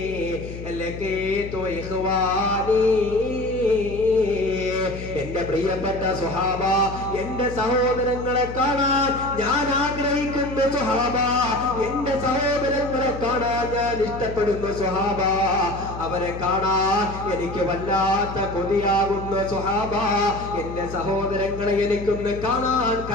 ലഖീതു ഇഖ്വാനീ, എന്റെ പ്രിയപ്പെട്ട സ്വഹാബ, എന്റെ സഹോദരങ്ങളെ കാണാൻ ഞാൻ ആഗ്രഹിക്കുന്നു സ്വഹാബ, എന്റെ സഹോദരങ്ങളെ കാണാൻ ഞാൻ ഇഷ്ടപ്പെടുന്നു സ്വഹാബ, അവരെ കാണാൻ എനിക്ക് വല്ലാത്ത കൊതിയാകുന്നു സ്വഹാബ, എന്റെ സഹോദരങ്ങളെ എനിക്കൊന്ന് കാണാൻ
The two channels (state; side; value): noise; left; hum, 10 dB below the sound